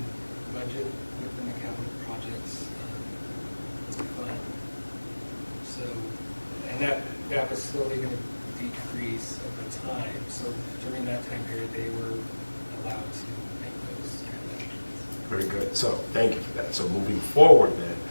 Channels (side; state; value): both; inverted; correlation -1.00